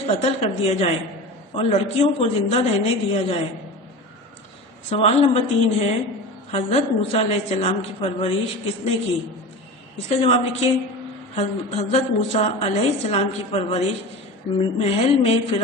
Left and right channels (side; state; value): both; normal; correlation 0.31